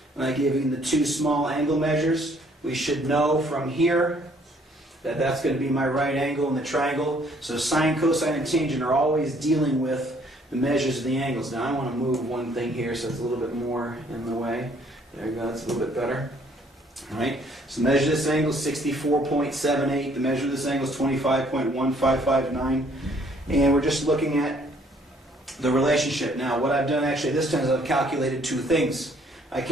And I've given the 2 small angle measures. We should know from here that that's going to be my right angle in the triangle. So sine, cosine, and tangent are always dealing with the measures of the angles. Now I want to move one thing here so it's a little bit more in the way. There you go, that's a little bit better. All right, so measure this angle is 64.78. The measure of this angle is 25.1559. And we're just looking at the relationship. Now what I've done actually this time is I've calculated 2 things. I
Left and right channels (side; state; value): both; normal; correlation 0.62